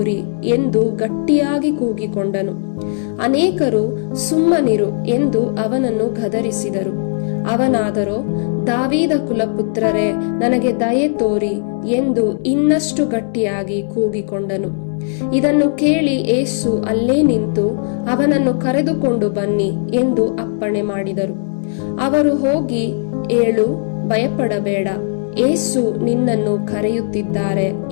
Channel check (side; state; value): right; silent; digital silence